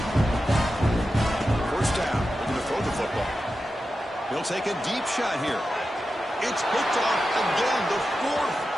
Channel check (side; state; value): both; normal; correlation 0.91